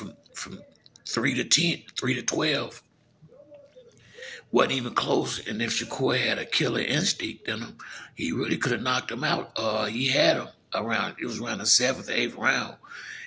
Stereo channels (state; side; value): identical; both; correlation 1.00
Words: 3 to 10, 3 to 12, wasn't even close. And if Shakur had a killer instinct in him, he really could have knocked him out. He had him it was around the 7th, 8th round.